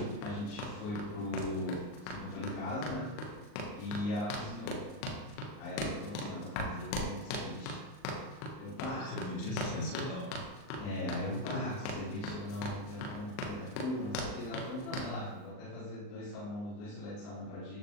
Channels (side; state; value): right; late; 39 ms